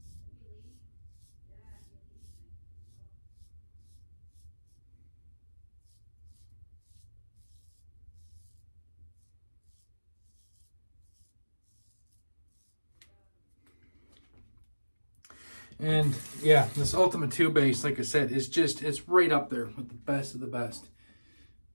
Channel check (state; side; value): inverted; both; correlation -1.00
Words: And yeah, this Ultima 2 base, like I said, it's right up there with the best of the best.